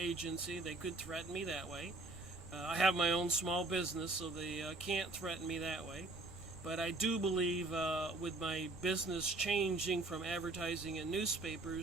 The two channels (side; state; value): left; quieter; 3.1 dB